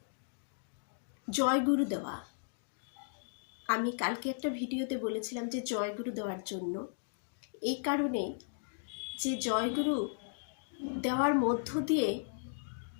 জয় গুরু দেওয়া, আমি কালকে একটা ভিডিওতে বলেছিলাম যে জয় গুরু দেওয়ার জন্য, এই কারণে যে জয় গুরু দেওয়ার মধ্য দিয়ে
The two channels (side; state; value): right; silent; digital silence